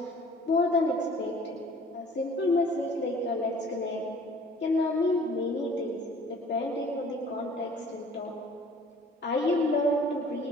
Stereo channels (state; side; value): normal; both; correlation 0.51